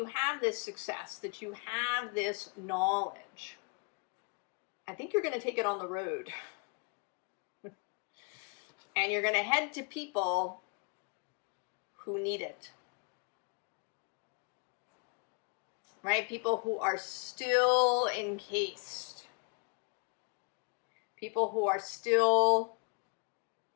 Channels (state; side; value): quieter; right; 33.6 dB